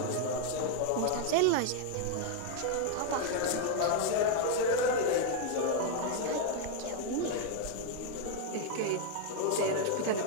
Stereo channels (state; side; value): different; both; correlation 0.00